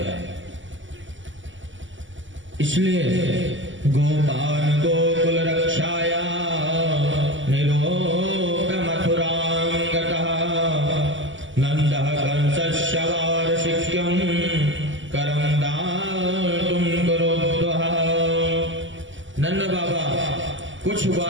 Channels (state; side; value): late; left; 0.55 ms